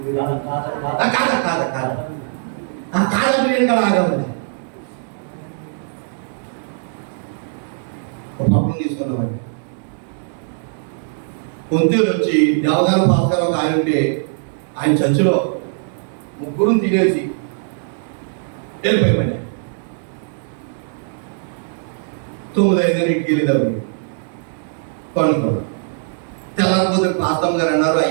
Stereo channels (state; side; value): silent; left; digital silence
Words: కాదా బిర్యానీ కూడా ఆగామండి. ఒక పప్పులు తీసుకున్నామండి. కొంతేరు వచ్చి దేవదాన పాస్టర్ ఒక ఆయన ఉంటే ఆయన చర్చిలో 3 తినేసి వెళ్ళిపోయామని 9:05 వెళ్ళేటప్పుడు పండుకోవడం. తెల్లకపోతే పాస్తమ్మ గారు అన్నారు,